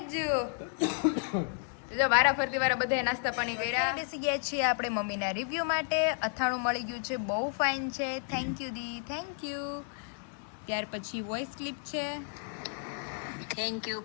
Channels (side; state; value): right; silent; 56 dB below the other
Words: જો વારા ફરતી વારા બધાએ નાસ્તા પાણી કર્યા. બેસી ગયા છીએ આપણે મમ્મીના રિવ્યુ માટે. અથાણું મળી ગયું છે, બહુ ફાઇન છે. થેન્ક યુ દી, થેન્ક યુ. ત્યાર પછી વોઇસ ક્લિપ છે. થેન્ક યુ